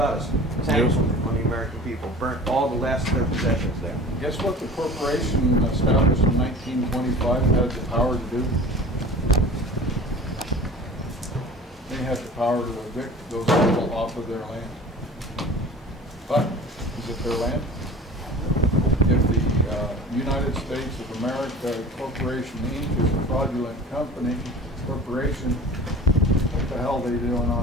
Tanks on the American people. Burnt all the last of their possessions there. Guess what the corporation established in 1925 had the power to do? They had the power to evict those people off of their land. But, is it their land? If the United States of America Corporation Inc. is a fraudulent corporation, what the hell are they doing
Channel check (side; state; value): both; normal; correlation 0.41